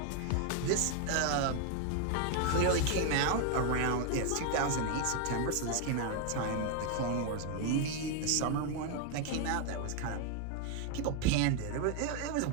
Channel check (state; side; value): different; both; correlation 0.00